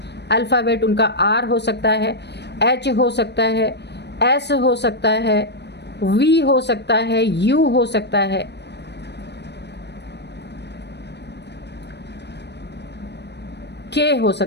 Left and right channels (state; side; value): late; right; 0.50 ms